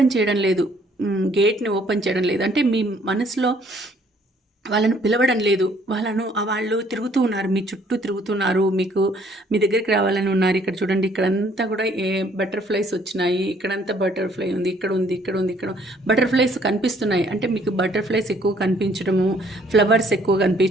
చేయడం లేదు, గేట్ని ఓపెన్ చేయడం లేదు. అంటే మీ మనసులో వాళ్ళను పిలవడం లేదు. వాళ్ళు తిరుగుతూ ఉన్నారు, మీ చుట్టూ తిరుగుతున్నారు, మీ దగ్గరికి రావాలని ఉన్నారు. ఇక్కడ చూడండి, ఇక్కడంతా కూడా బటర్ఫ్లైస్ వచ్చినాయి. ఇక్కడంతా బటర్ఫ్లై ఉంది, ఇక్కడ ఉంది, ఇక్కడ బటర్ఫ్లైస్ కనిపిస్తున్నాయి. అంటే మీకు బటర్ఫ్లైస్ ఎక్కువ కనిపించడము, ఫ్లవర్స్ ఎక్కువ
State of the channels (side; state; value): both; normal; correlation 0.62